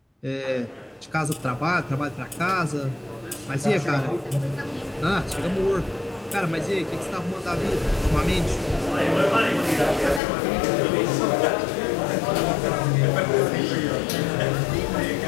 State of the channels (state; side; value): drops out; right; at 10.2 s